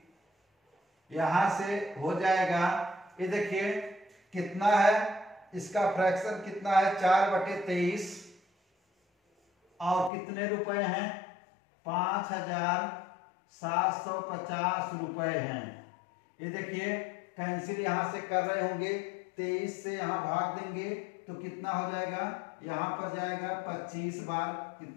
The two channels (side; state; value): right; drops out; at 10.1 s